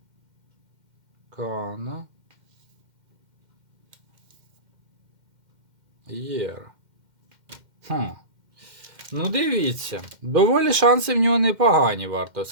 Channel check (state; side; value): late; left; 2.1 ms